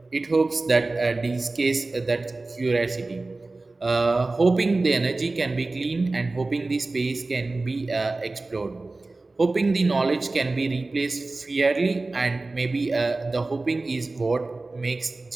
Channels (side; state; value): left; quieter; 3.3 dB